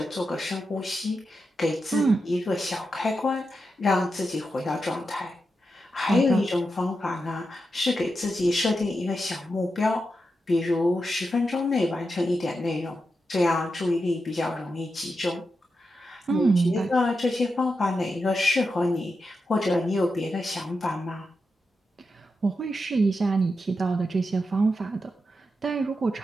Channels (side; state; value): both; normal; correlation 0.88